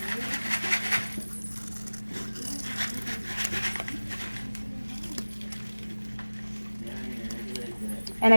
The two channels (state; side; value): inverted; both; correlation -1.00